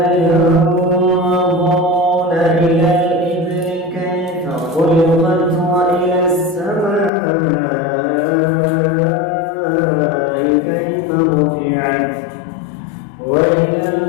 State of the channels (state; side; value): drops out; right; at 7.1 s